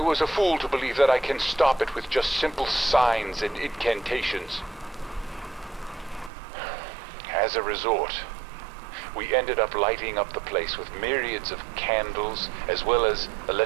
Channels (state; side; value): drops out; left; at 6.3 s